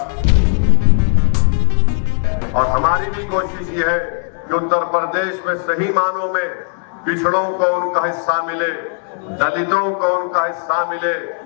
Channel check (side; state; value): right; silent; 59 dB below the other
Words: और हमारी भी कोशिश ये है कि उत्तर प्रदेश में सही मानों में पिछड़ों को उनका हिस्सा मिले, दलितों को उनका हिस्सा मिले,